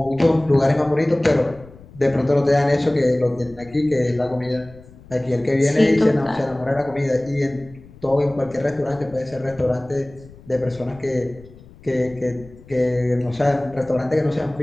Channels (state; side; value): noise; left; rumble, 22 dB below the sound